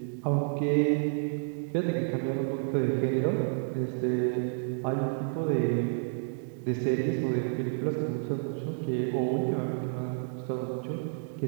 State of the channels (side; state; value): left; silent; digital silence